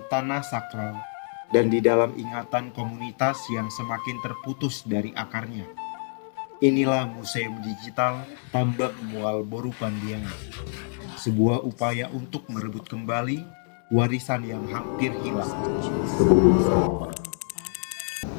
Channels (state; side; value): silent; right; digital silence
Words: tanah sakral, dan di dalam ingatan komunitas yang semakin terputus dari akarnya. Inilah Museum Digital Tambak Mual Boru Pandiangan, sebuah upaya untuk merebut kembali warisan yang hampir hilang.